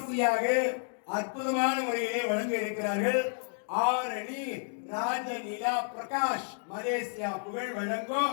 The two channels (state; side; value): silent; right; digital silence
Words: அற்புதமான முறையிலே வழங்க இருக்கிறார்கள். ஆரணி ராஜ நிலா பிரகாஷ் மலேசியா புகழ் வழங்கும்